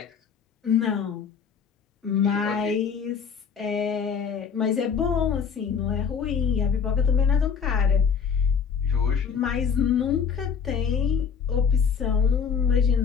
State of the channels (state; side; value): quieter; right; 6.7 dB